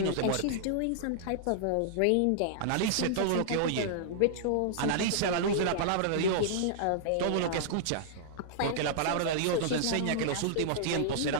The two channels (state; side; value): different; both; correlation -0.01